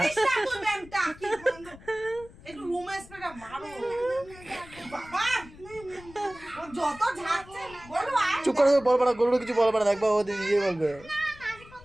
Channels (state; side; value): noise; left; rumble, 20 dB below the sound